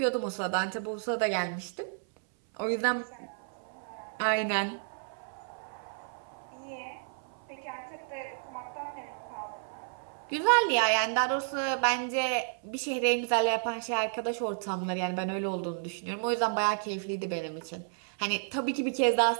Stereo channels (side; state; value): left; silent; 57 dB below the other